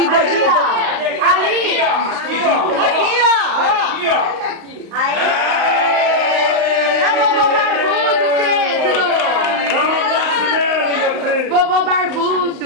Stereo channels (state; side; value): late; left; 35 ms